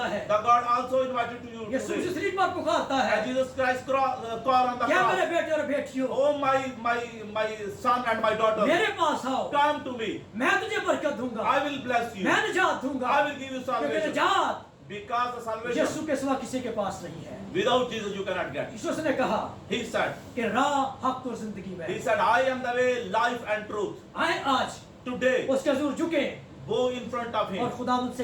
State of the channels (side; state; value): both; identical; correlation 1.00